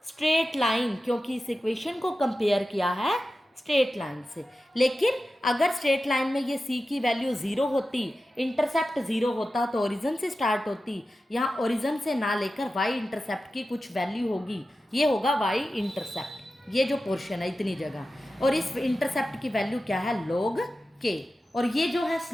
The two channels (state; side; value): normal; both; correlation 0.93